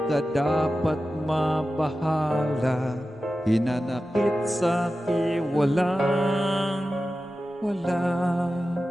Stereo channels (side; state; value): both; normal; correlation 0.93